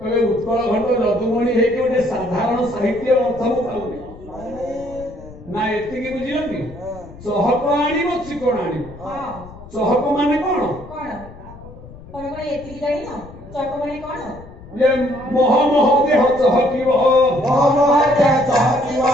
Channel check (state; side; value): noise; left; rumble, 18 dB below the sound